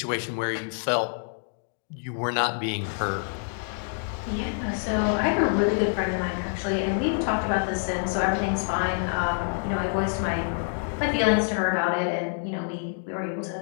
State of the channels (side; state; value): right; silent; digital silence